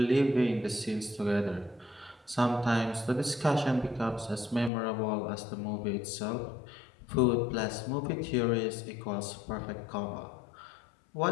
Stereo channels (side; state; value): right; drops out; at 4.7 s